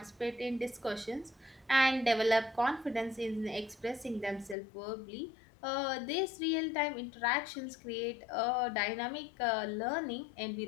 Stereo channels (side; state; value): right; drops out; at 4.5 s